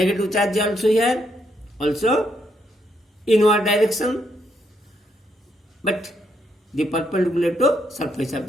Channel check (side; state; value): both; normal; correlation 0.76